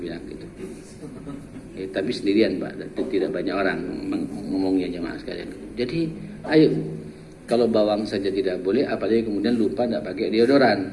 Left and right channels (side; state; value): both; identical; correlation 1.00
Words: bilang gitu. Ya, tapi sendirian Pak, tidak banyak orang ngomongnya jemaah sekalian. Jadi ayo, kalau bawang saja tidak boleh, apalagi kemudian lupa tidak pakai deodoran.